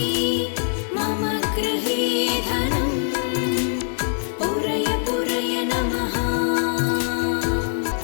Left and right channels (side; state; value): right; silent; 63 dB below the other